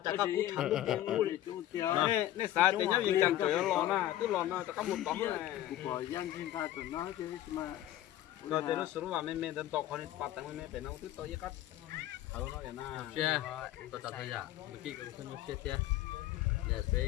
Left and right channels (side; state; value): right; quieter; 13.5 dB